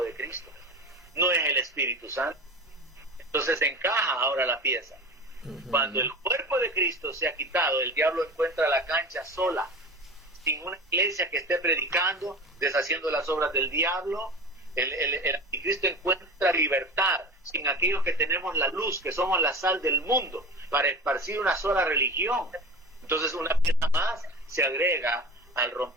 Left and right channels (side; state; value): both; normal; correlation 0.31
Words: de Cristo, no es el Espíritu Santo. Entonces encaja ahora la pieza. Cuando el cuerpo de Cristo sea quitado, el diablo encuentra la cancha sola, sin una iglesia que esté predicando, deshaciendo las obras del diablo. El anticristo encuentra libertad sin aquellos que tenemos la luz, que somos la sal del mundo, para esparcir una sola religión. Entonces una pieza más se agrega al